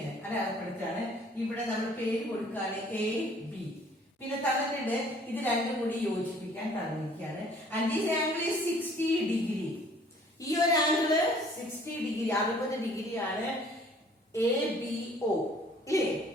അടയാളപ്പെടുത്താണ്. ഇവിടെ നമ്മൾ പേര് കൊടുക്കുകയാണ് എ ബി. പിന്നെ തന്നിട്ടുണ്ട് ഇത് രണ്ടും കൂടി യോജിപ്പിക്കാൻ തന്നിരിക്കുകയാണ്. And this angle is 60 degree. ഈ ഒരു ആംഗിള് 60 ഡിഗ്രി 60 ഡിഗ്രിയാണ് എ ബി ഒ ഇല്ലേ.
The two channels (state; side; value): normal; both; correlation 0.56